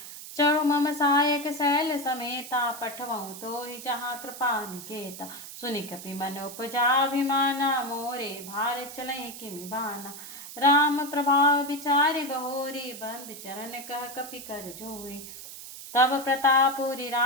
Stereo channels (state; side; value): noise; right; hiss, 12 dB below the sound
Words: चढ़ो मम सहायक शैल समेता, पठवऊँ तो ही जहाँ कृपा निकेता। सुनि कपि मन उपजाभिमाना, मोरे भार चलई किमि बाना। राम प्रभाव विचारि बहोरी, बंद चरण कह कपि कर जोई। तब प्रतापुरी